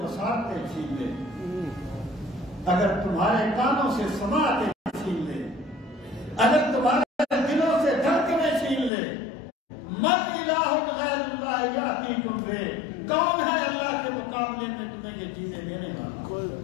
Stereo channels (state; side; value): drops out; right; at 8.9 s